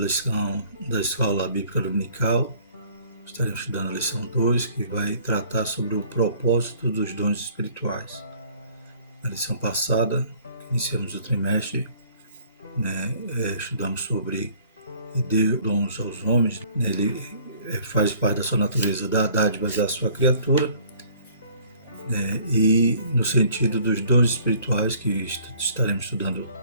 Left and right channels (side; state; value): both; inverted; correlation -0.55